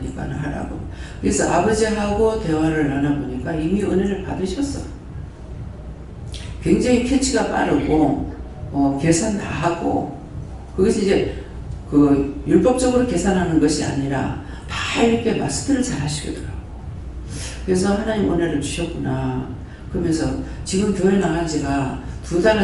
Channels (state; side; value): identical; both; correlation 1.00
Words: 하라고. 그래서 아버지하고 대화를 나눠보니까 이미 은혜를 받으셨어. 굉장히 캐치가 빠르고 계산 다 하고 그것이 이제 그 율법적으로 계산하는 것이 아니라 다 이렇게 마스터를 잘 하시더라고요. 그래서 하나님 은혜를 주셨구나. 그러면서 지금 교회 나간 지가